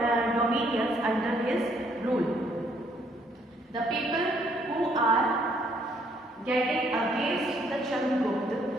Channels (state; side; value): normal; both; correlation 0.67